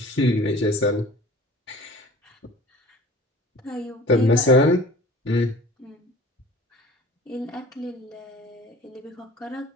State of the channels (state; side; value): normal; both; correlation 0.45